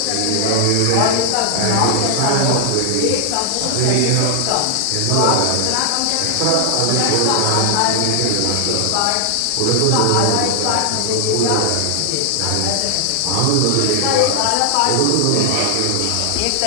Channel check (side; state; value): both; different; correlation 0.00